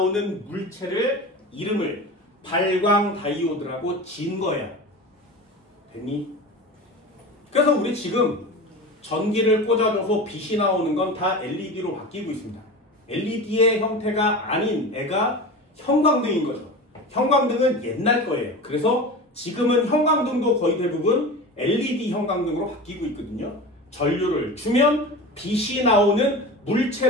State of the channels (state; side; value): normal; both; correlation 0.30